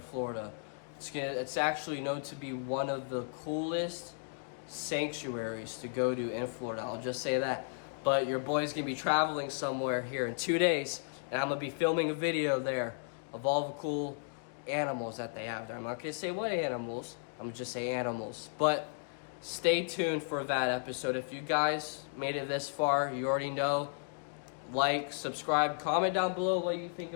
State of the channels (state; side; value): silent; right; digital silence